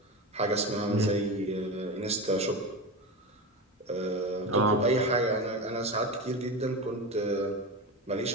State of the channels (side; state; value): both; normal; correlation 0.23